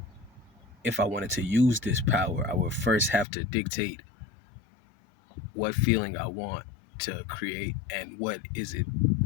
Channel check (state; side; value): drops out; right; at 3.2 s